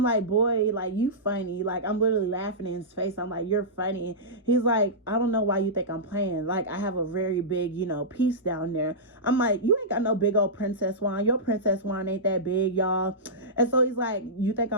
like, boy, like, you funny. Like, I'm literally laughing in his face. I'm like, you're funny. He's like, I don't know why you think I'm playing. Like, I have a very big, piece down there. I'm like, you ain't got no big old princess wine. Your princess wine ain't that big, y'all. And so he's like, you think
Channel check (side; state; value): both; normal; correlation -0.15